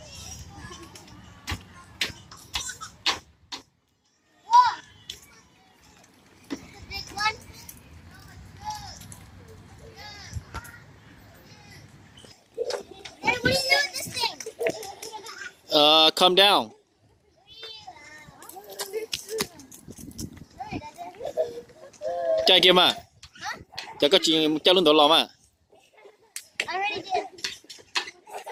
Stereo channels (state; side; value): identical; both; correlation 1.00